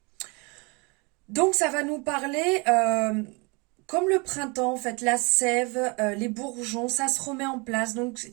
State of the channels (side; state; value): left; quieter; 29.0 dB